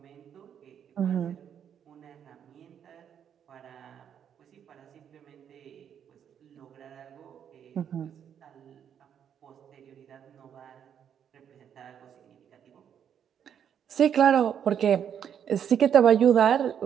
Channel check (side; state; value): left; quieter; 8.7 dB